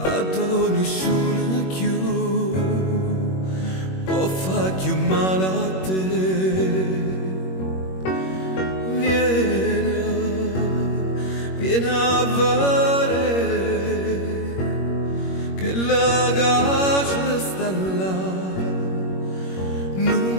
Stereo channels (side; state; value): right; late; 21 ms